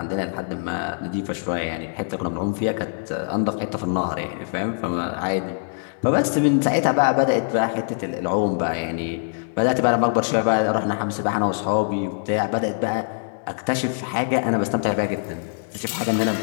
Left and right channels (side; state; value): right; silent; digital silence